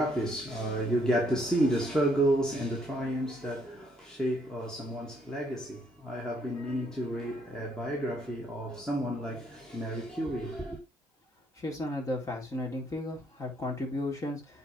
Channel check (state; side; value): normal; both; correlation 0.69